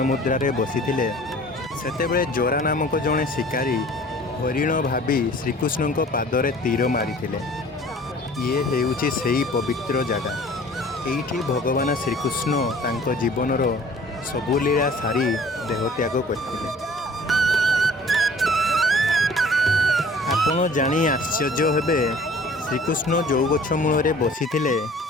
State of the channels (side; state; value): both; normal; correlation 0.50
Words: ମୁଦ୍ରାରେ ବସିଥିଲେ, ସେତେବେଳେ ଜରା ନାମକ ଜଣେ ଶିକାରୀ ହରିଣ ଭାବି ଶ୍ରୀକୃଷ୍ଣଙ୍କ ପାଦରେ ତୀର ମାରିଥିଲେ। ଇଏ ହେଉଛି ସେହି ପବିତ୍ର ଜାଗା। ଏଇଠି ଭଗବାନ ଶ୍ରୀକୃଷ୍ଣ ତାଙ୍କ ଜୀବନର ସବୁ ଲୀଳା ସାରି ଦେହତ୍ୟାଗ କରିଥିଲେ। ଆପଣ ଜାଣି ଆଶ୍ଚର୍ଯ୍ୟ ହେବେ, ଶ୍ରୀକୃଷ୍ଣ ଯେଉଁ ଗଛ ମୂଳରେ ବସିଥିଲେ